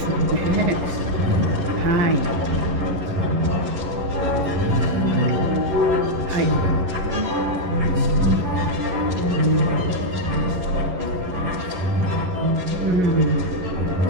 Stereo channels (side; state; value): left; late; 11 ms